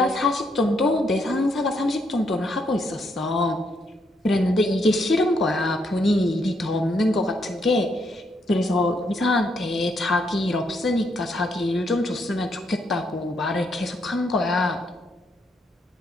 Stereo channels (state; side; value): normal; both; correlation 0.76